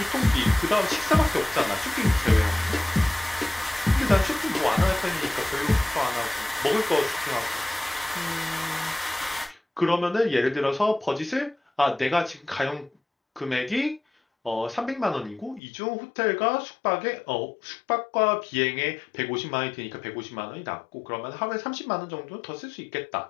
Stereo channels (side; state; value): right; drops out; at 15.6 s